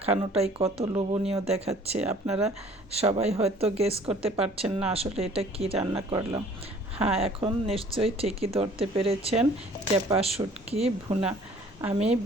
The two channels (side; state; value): both; normal; correlation 0.53